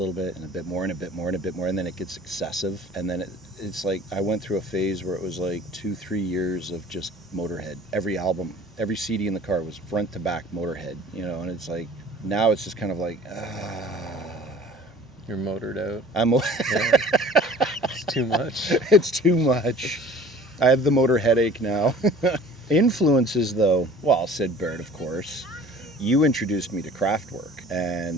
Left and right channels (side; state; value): both; normal; correlation 0.47